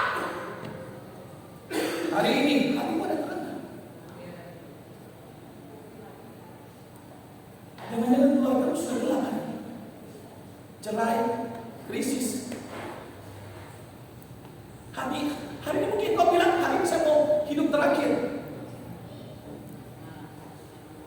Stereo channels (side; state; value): both; identical; correlation 1.00